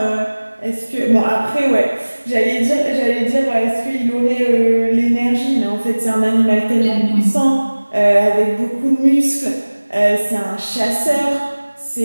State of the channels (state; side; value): inverted; both; correlation -1.00